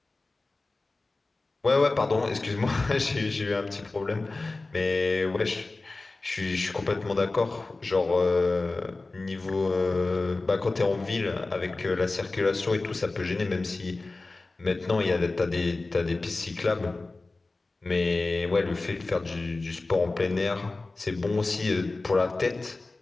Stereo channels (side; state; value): right; quieter; 3.3 dB